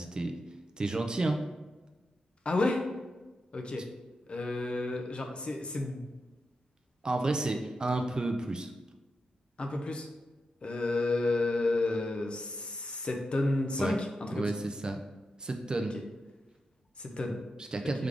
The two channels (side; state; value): both; normal; correlation 0.88